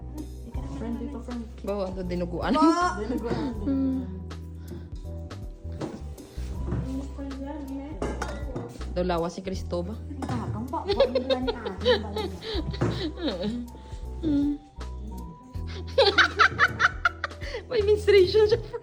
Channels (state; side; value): identical; both; correlation 1.00